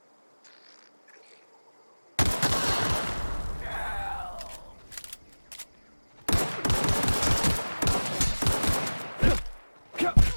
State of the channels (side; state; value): both; inverted; correlation -1.00